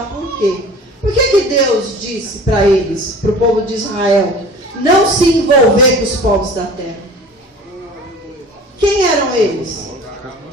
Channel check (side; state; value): both; normal; correlation 0.42